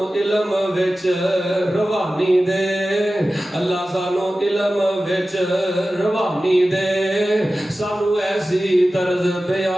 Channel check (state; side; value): normal; both; correlation 0.95